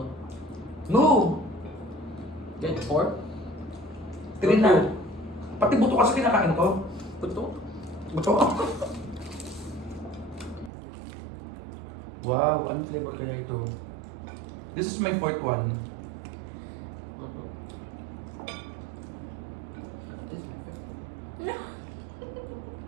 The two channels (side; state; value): left; drops out; at 10.7 s